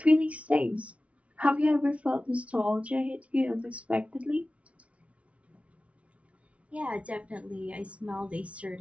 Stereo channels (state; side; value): late; left; 0.063 ms